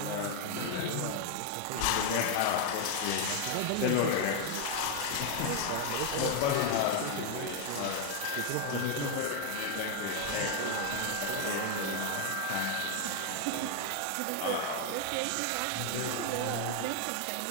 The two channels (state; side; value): different; both; correlation 0.00